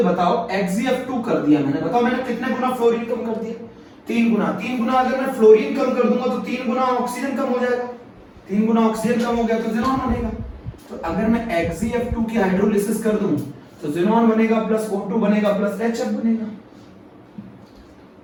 बताओ, XgF2 कर दिया मैंने, बताओ मैंने कितने गुना फ्लोरीन कम कर दिया? 3 गुना। 3 गुना अगर मैं फ्लोरीन कम कर दूंगा तो 3 गुना ऑक्सीजन कम हो जाएगा। 3 गुना ऑक्सीजन कम हो गया तो ज़ीनॉन बनेगा। तो अगर मैं XgF2 की हाइड्रोलिसिस कर दूं तो ज़ीनॉन बनेगा प्लस O2 बनेगा प्लस HF बनेगा।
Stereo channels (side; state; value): both; identical; correlation 1.00